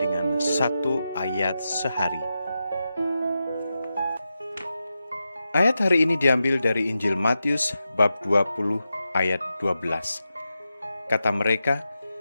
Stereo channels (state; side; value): inverted; both; correlation -0.90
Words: satu ayat sehari. Ayat hari ini diambil dari Injil Matius bab 20 ayat 12. Kata